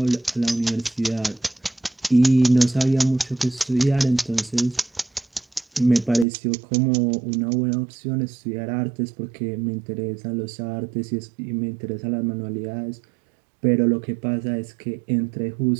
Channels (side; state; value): left; drops out; at 6.2 s